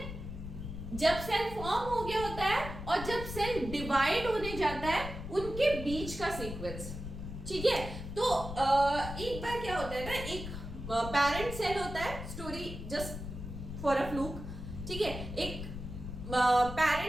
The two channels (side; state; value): left; noise; rumble, 8 dB below the sound